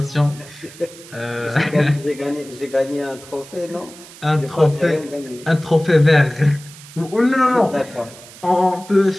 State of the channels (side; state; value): right; noise; hiss, 19 dB below the sound